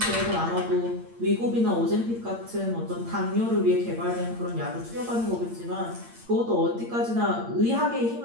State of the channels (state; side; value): late; left; 8.7 ms